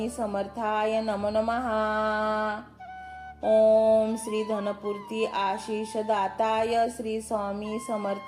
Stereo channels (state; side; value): identical; both; correlation 1.00